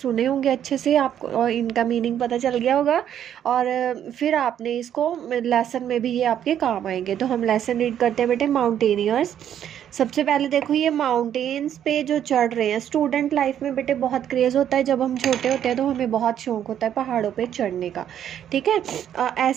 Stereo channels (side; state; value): left; quieter; 10.0 dB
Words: होंगे अच्छे से, आपको और इनका मीनिंग पता चल गया होगा और फिर आपने इसको लेसन में भी ये आपके काम आएंगे। तो हम लेसन रीड करते हैं बेटे। माउंटेनियर्स। सबसे पहले देखो ये माउंटेन्स पे जो चढ़ रहे हैं, स्टूडेंट लाइफ में बेटे बहुत क्रेज़ होता है। जब हम छोटे होते हैं तो हमें बहुत शौक होता है पहाड़ों पे चढ़ने का, ठीक है।